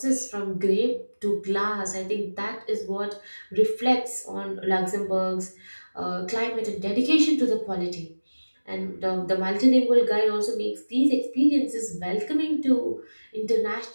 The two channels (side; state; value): both; inverted; correlation -1.00